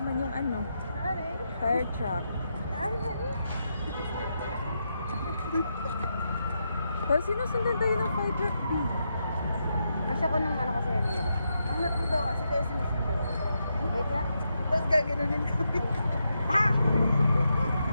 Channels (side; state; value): both; inverted; correlation -0.84